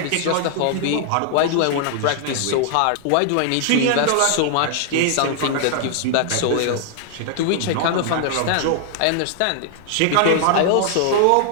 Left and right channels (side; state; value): both; different; correlation 0.00